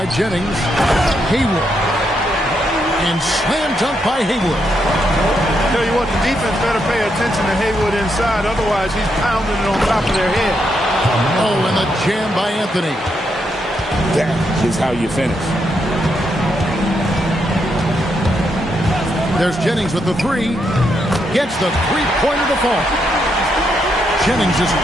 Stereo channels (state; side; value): normal; both; correlation 0.79